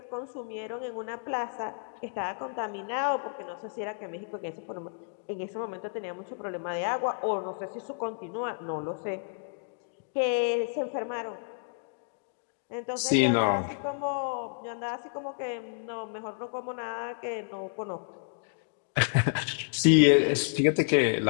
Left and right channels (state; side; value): silent; right; digital silence